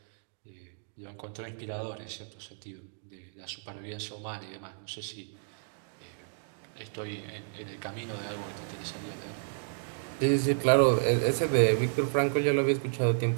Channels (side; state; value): left; silent; digital silence